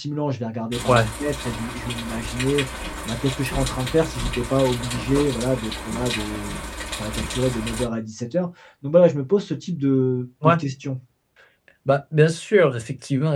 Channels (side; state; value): both; identical; correlation 1.00